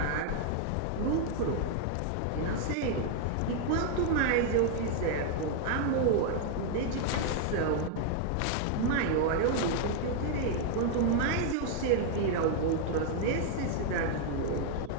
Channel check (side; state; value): both; different; correlation 0.00